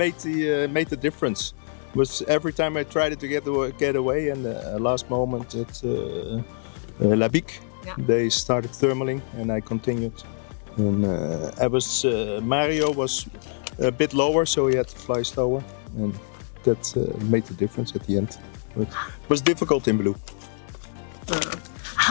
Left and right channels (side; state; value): right; silent; 62 dB below the other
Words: the difference. Was every time I tried to get away, and last moment at La Bic, Yeah. they started thermaling, and I continued. And Mario was a bit lower, so he had to fly slower, and that made the difference at the end. But it was difficult in blue.